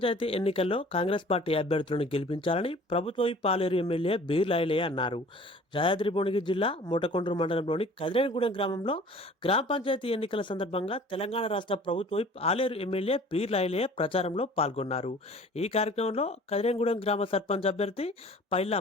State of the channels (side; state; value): both; normal; correlation 0.48